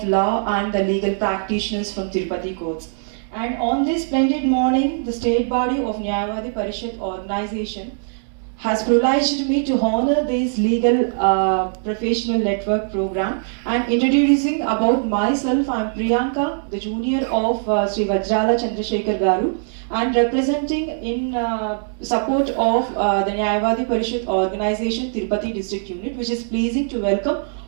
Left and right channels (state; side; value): silent; left; digital silence